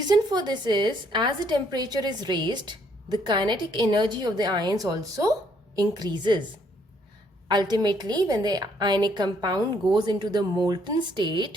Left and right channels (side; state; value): both; normal; correlation 0.68